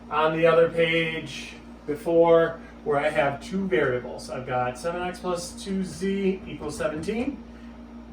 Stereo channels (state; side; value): identical; both; correlation 1.00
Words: on the other page before where I have two variables. I've got 7x plus 2z equals 17,